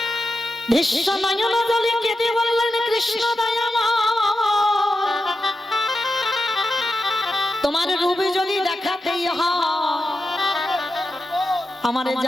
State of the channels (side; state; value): both; normal; correlation 0.89